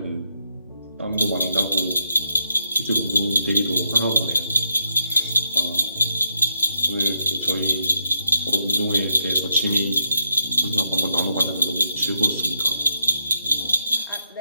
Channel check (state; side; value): inverted; both; correlation -0.81